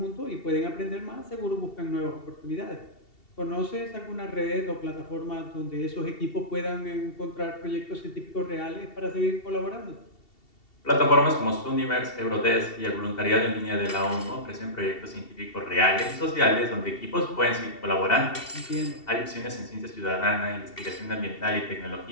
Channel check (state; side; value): late; right; 2.7 ms